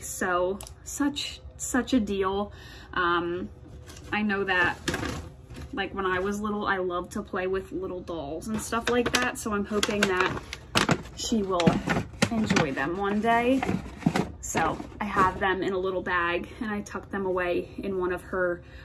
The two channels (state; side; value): identical; both; correlation 1.00